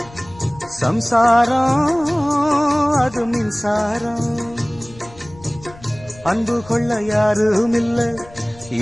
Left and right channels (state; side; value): noise; left; rumble, 21 dB below the sound